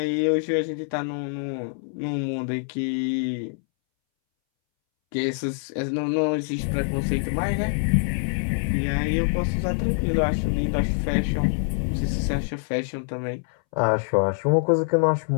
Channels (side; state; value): right; silent; 62 dB below the other